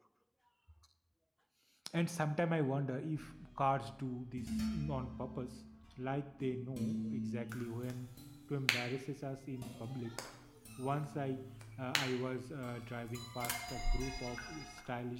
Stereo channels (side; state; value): both; identical; correlation 1.00